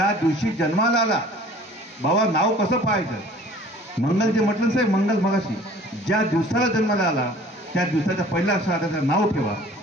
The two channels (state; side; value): normal; both; correlation 0.49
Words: दिवशी जन्माला आला, बाबा नाव कसं पाहायचं? मंगल जे म्हटलं साहेब, मंगल मगाशी ज्या दिवसाला जन्माला आला त्या दिवसाच्या पहिल्या अक्षरात त्याचं नाव ठेवा.